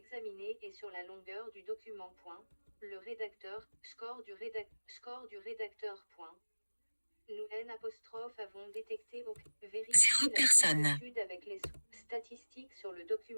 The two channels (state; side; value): inverted; both; correlation -1.00